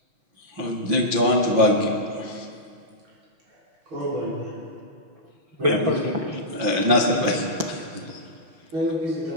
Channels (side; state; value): left; late; 5.8 ms